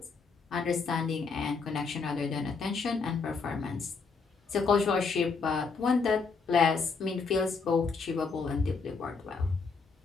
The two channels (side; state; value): right; quieter; 4.8 dB